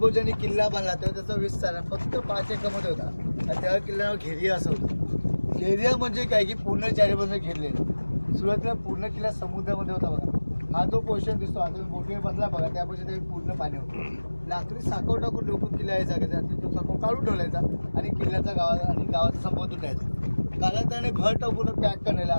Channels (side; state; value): both; inverted; correlation -1.00